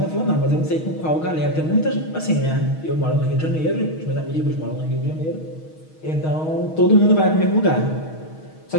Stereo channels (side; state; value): right; late; 6.3 ms